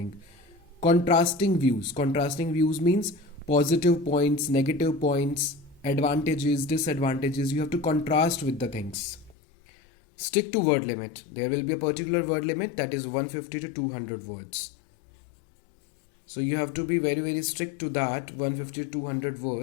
Contrasting views. Contrasting views means positive points, negative points, advantages, disadvantages. You have to contrast with the things. Stick to word limit. There will be a particular word limit, that is 150 to 200 words. So you have to be very, very strict to that, 150 to 200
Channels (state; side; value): drops out; right; at 9.3 s